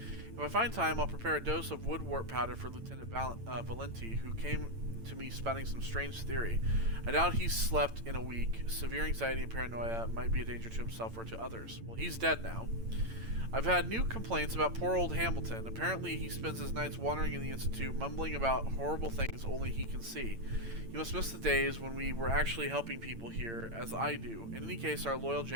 If I find time, I'll prepare a dose of woodwort powder for Lieutenant Valenti, who came to me spouting some strange theory. I doubt he's slept in a week. Severe anxiety and paranoia might be a danger to himself or to others. Well, he's dead now. I've had new complaints about poor old Hamilton. Apparently he spends his nights wandering in the Institute, mumbling about horrible things only he can see. You must miss the days when we were actually helping people here, as I do. In any case, our loyal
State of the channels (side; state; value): left; late; 8.9 ms